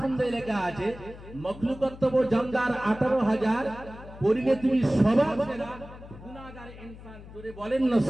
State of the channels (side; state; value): left; noise; hum, 16 dB below the sound